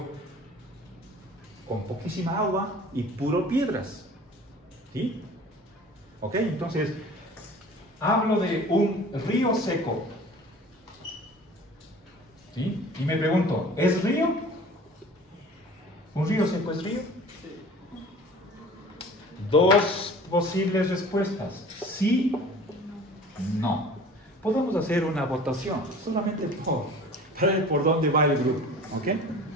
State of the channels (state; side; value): normal; both; correlation 0.44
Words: con poquísima agua y puro piedras. ¿Sí? Ok, entonces hablo de un río seco. ¿Sí? Y me pregunto, ¿es río? ¿Un río seco es río? Dos posibles respuestas: sí, no. Podemos hacer una votación, solamente para ver por dónde va el grupo. ¿Ok?